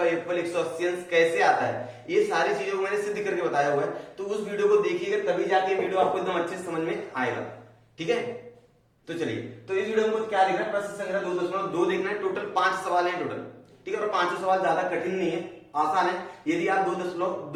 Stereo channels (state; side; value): identical; both; correlation 1.00